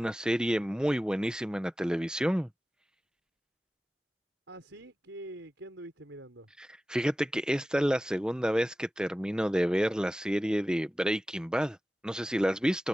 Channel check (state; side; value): normal; both; correlation 0.96